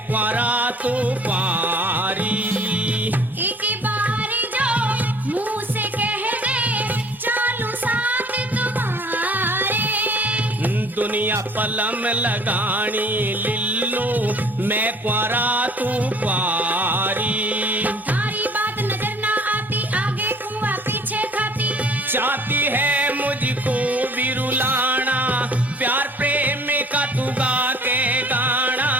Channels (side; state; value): both; normal; correlation 0.53